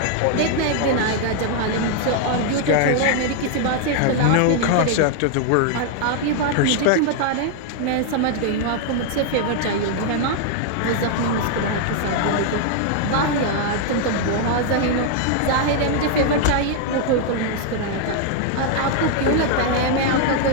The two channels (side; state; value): both; different; correlation 0.00